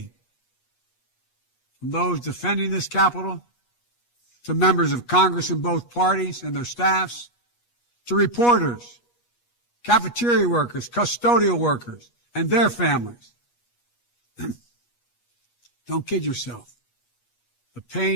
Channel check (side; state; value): right; late; 8.3 ms